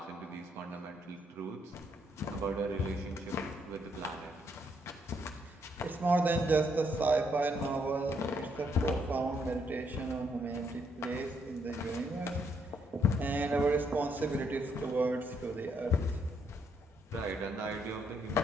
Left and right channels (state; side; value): normal; both; correlation 0.74